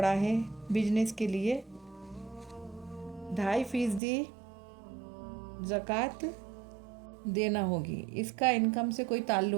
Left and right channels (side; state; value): left; drops out; at 4.0 s